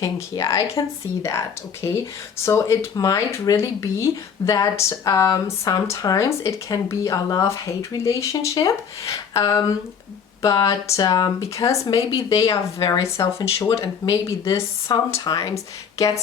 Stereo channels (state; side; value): quieter; right; 6.9 dB